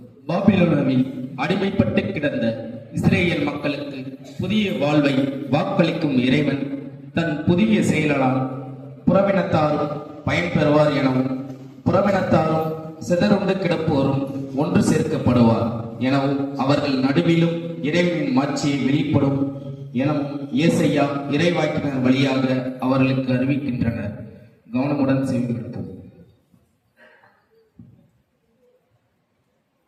பாபிலோனாவில் அடிமைப்பட்டு கிடந்த இஸ்ரேல் மக்களுக்கு புதிய வாழ்வை வாக்களிக்கும் இறைவன் தன் புதிய செயலால் புறவினத்தாரும் பயன்பெறுவார் எனவும், புறவினத்தாரும் சிதறுண்டு கிடப்போரும் ஒன்று சேர்க்கப்படுவார் எனவும், அவர்கள் நடுவிலும் இறைவனின் மாட்சியை வெளிப்படும் எனவும் ஏசையா இறைவாக்கினர் வழியாக அவர்களுக்கு அறிவிக்கின்றனர். கவனமுடன் செவிமடுப்போம்.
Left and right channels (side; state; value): both; identical; correlation 1.00